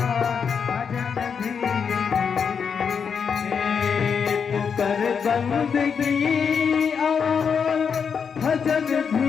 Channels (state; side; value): quieter; right; 6.5 dB